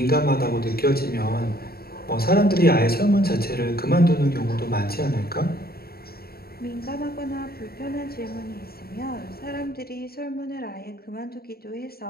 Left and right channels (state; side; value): late; right; 0.45 ms